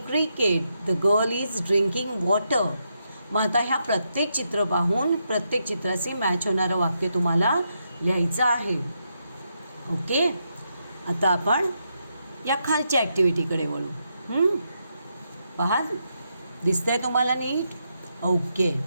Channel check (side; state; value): both; inverted; correlation -0.81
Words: cricket. The girl is drinking water. मग आता ह्या प्रत्येक चित्र पाहून प्रत्येक चित्राशी मॅच होणारं वाक्य तुम्हाला लिहायचं आहे. ओके. आता आपण या खालच्या ॲक्टिव्हिटीकडे वळू. पहा, दिसतंय तुम्हाला नीट? ओके.